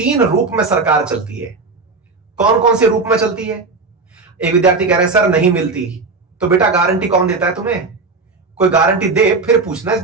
रूप में सरकार चलती है। कौन कौन से रूप में चलती है? एक विद्यार्थी कह रहे हैं सर नहीं मिलती, तो बेटा गारंटी कौन देता है तुम्हें? कोई गारंटी दे फिर पूछना इस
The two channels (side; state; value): left; quieter; 4.0 dB